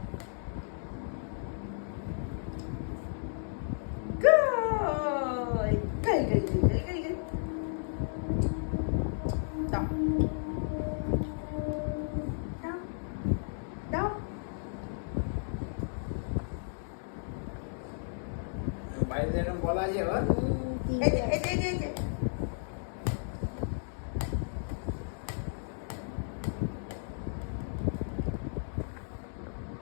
কই কই কই কই কই কই দাও দাও দাও। বাইরে যেরকম বলা আছে আবার এই যে এই যে এই যে এই যে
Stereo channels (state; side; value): silent; right; digital silence